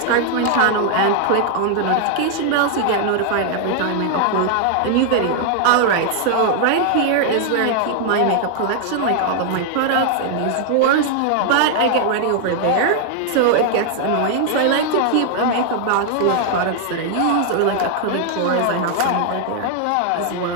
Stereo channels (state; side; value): different; both; correlation 0.00